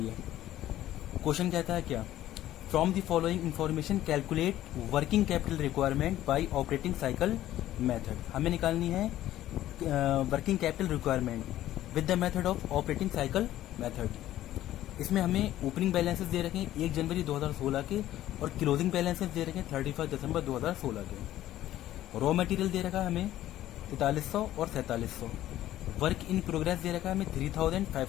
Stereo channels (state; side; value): quieter; right; 13.6 dB